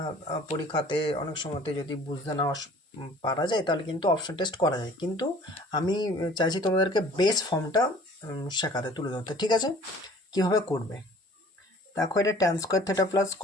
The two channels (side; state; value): both; normal; correlation 0.50